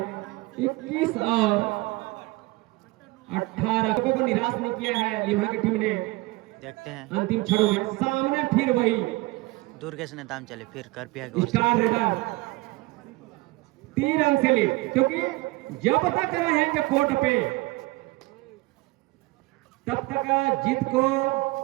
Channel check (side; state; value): left; quieter; 22.2 dB